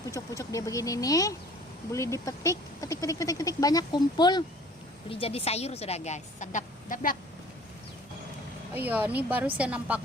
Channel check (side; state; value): both; normal; correlation 0.50